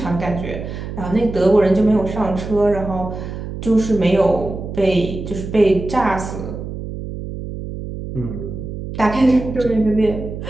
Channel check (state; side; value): noise; right; hum, 8 dB below the sound